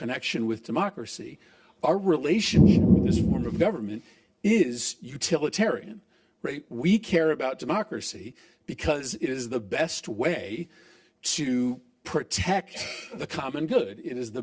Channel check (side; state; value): both; identical; correlation 1.00